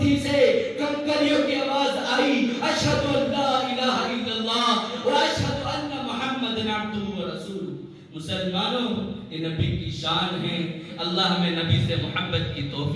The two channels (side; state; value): both; identical; correlation 1.00